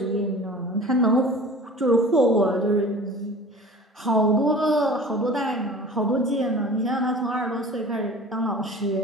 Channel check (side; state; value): both; normal; correlation 0.42